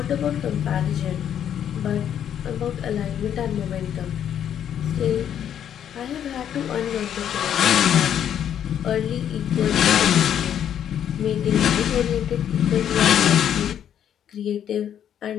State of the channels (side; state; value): right; quieter; 9.6 dB